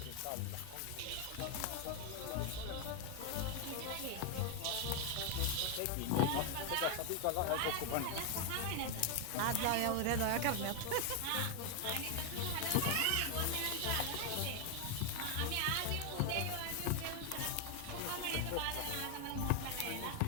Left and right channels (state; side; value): different; both; correlation 0.01